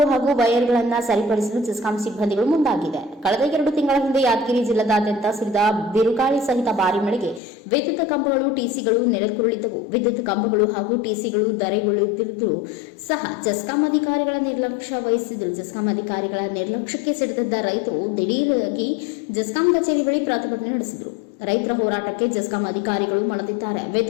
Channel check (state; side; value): drops out; right; at 7.4 s